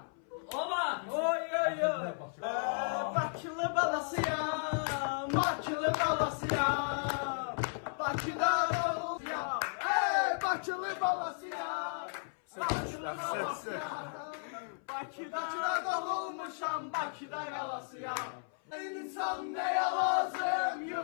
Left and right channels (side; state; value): right; silent; 55 dB below the other